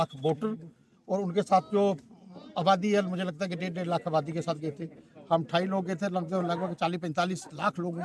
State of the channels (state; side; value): identical; both; correlation 1.00